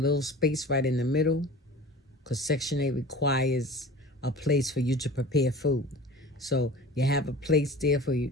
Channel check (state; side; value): normal; both; correlation 0.39